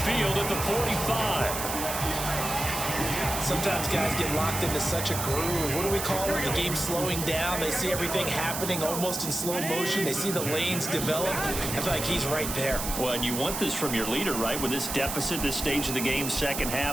at the 45. Sometimes guys get locked into such a groove. What do we call it? The game slowing down. They see everything happening almost in slow motion. They see the lanes develop. I feel like he's right there. Well, and you want this from your leader, right? With this deficit, this stage of the game, second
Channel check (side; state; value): right; noise; hiss, 4 dB below the sound